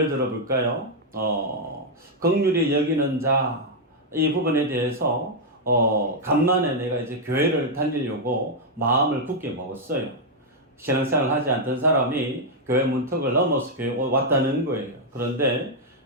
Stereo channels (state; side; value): normal; both; correlation -0.02